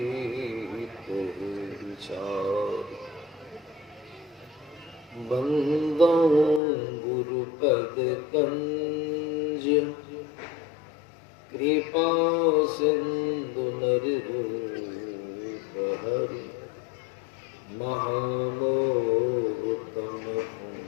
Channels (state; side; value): drops out; right; at 6.6 s